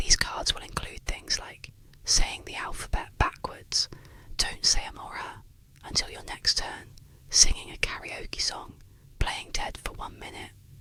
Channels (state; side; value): identical; both; correlation 1.00